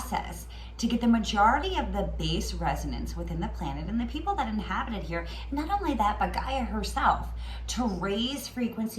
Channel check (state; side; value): identical; both; correlation 1.00